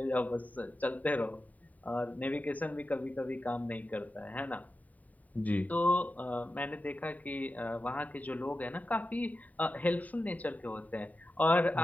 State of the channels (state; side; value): late; right; 0.073 ms